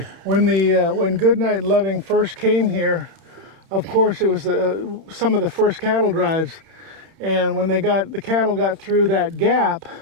When Goodnight and Loving first came here, of course it was some of the first cattle drives, and when the cattle got through that gap,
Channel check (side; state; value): left; late; 31 ms